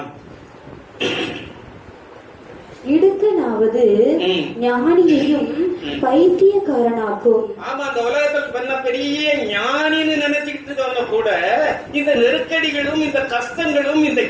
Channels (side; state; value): both; identical; correlation 1.00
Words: இடுக்கனாவது ஞானியையும் பைத்தியக்காரனாக்கும். ஆமா, அந்த உலகத்தில் பண்ண பெரிய ஞானின்னு நினைச்சுக்கிட்டு இருக்கவங்க கூட இந்த நெருக்கடிகளும் இந்த கஷ்டங்களும் இந்த